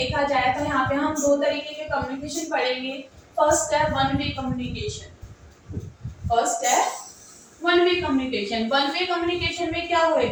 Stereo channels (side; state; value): both; identical; correlation 1.00